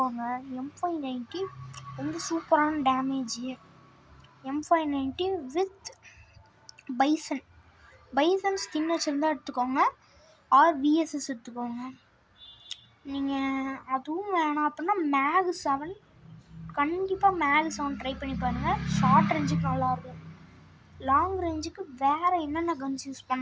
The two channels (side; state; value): both; identical; correlation 1.00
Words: M590 ரொம்ப சூப்பரான damage. M590 with bison skin வச்சுருந்தா எடுத்துக்கோங்க. VSS எடுத்துக்கோங்க. நீங்கள் அதுவும் வேணாம் அப்படின்னா மேக் 7 கண்டிப்பாக மேக் 7 ட்ரை பண்ணி பாருங்கள். ஷார்ட் ரேஞ்சுக்கு நல்லாயிருக்கும். லாங் ரேஞ்சுக்கு வேறு என்னென்ன கன்ஸ் யூஸ்